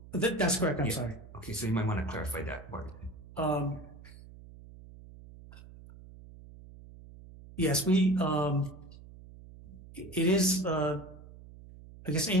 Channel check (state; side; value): noise; right; hum, 18 dB below the sound